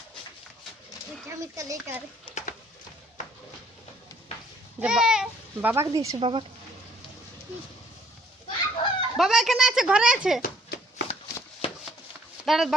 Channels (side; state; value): both; normal; correlation 0.62